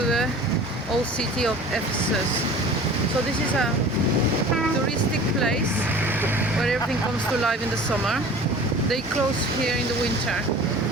old city of Ephesus. So this is a touristic place where everything comes to life in the summer. They close here in the winter.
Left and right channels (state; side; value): normal; both; correlation 0.42